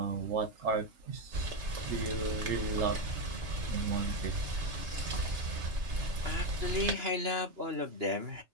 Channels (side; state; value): left; late; 2.9 ms